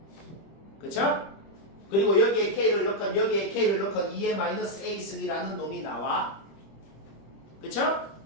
그쵸? 그리고 여기에 k를 넣건 여기에 k를 넣건 2의 마이너스 a승이라는 놈이 나와. 그쵸?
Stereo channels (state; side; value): late; right; 25 ms